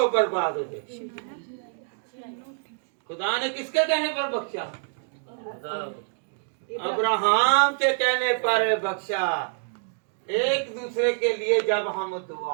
बर्बाद हो जाए। खुदा ने किसके कहने पर बख्शा? अब्राहम के कहने पर बख्शा। एक दूसरे के लिए जब हम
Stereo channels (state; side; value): silent; left; digital silence